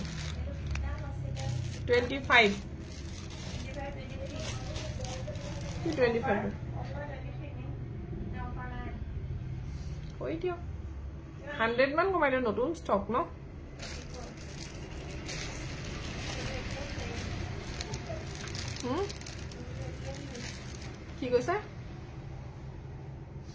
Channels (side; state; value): both; identical; correlation 1.00